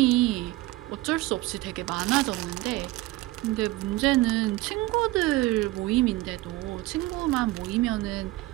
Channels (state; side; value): quieter; left; 19.0 dB